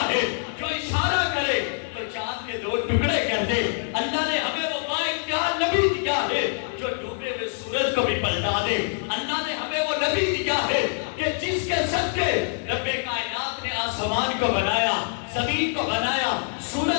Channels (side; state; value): right; silent; 62 dB below the other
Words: ہے جو اشارہ کرے تو چاند کے 2 ٹکڑے کر دے. اللہ نے ہمیں وہ بااختیار نبی دیا ہے جو ڈوبے ہوئے سورج کو بھی پلٹا دے. اللہ نے ہمیں وہ نبی دیا ہے کہ جس کے صدقے رب کائنات نے آسمان کو بنایا، زمین کو بنایا،